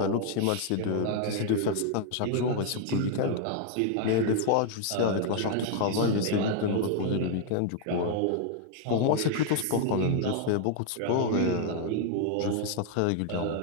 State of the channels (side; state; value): both; different; correlation 0.00